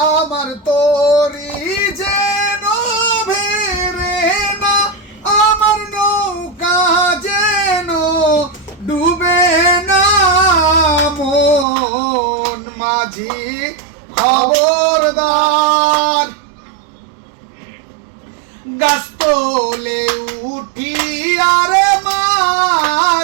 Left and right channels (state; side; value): drops out; left; at 11.7 s